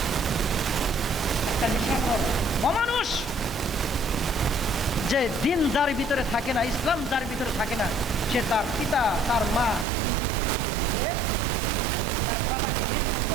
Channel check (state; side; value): drops out; left; at 9.9 s